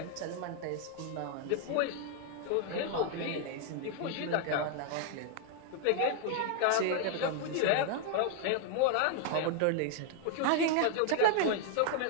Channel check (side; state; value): both; different; correlation 0.00